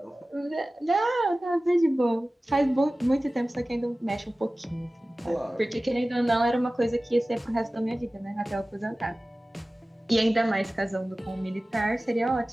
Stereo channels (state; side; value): normal; both; correlation 0.97